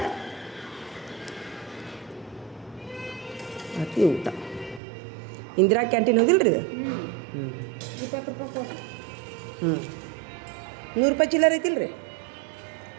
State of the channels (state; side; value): drops out; left; at 4.8 s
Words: ಅತಿ ಊಟ ಇಂದಿರಾ ಕ್ಯಾಂಟೀನ್ ಹೋಗಿಲ್ಲ ರೀ ಇದು ಹ್ಞೂ 20 ರೂಪಾಯಿ ಕೊಟ್ಟು ಹ್ಞೂ 100 ರೂಪಾಯಿ ಚಿಲ್ಲರ್ ಐತಿಲ್ಲ ರೀ